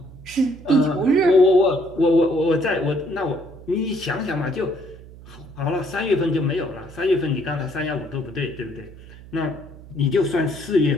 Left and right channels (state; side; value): noise; right; hum, 18 dB below the sound